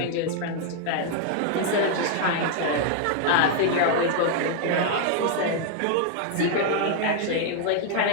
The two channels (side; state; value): both; different; correlation 0.00